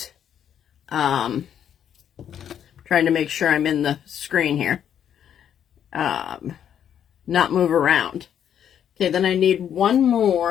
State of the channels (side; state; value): right; quieter; 9.3 dB